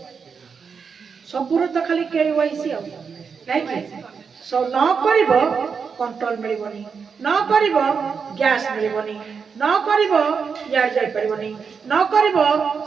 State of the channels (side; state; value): left; quieter; 5.9 dB